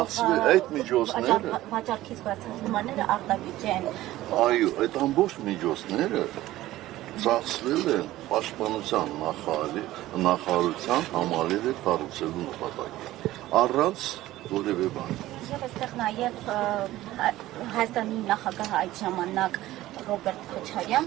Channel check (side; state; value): left; quieter; 15.8 dB